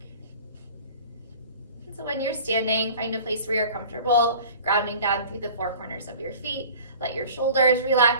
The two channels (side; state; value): both; inverted; correlation -0.44